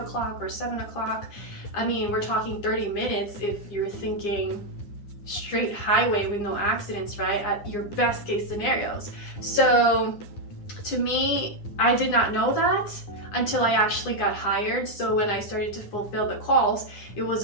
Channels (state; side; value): late; right; 9.8 ms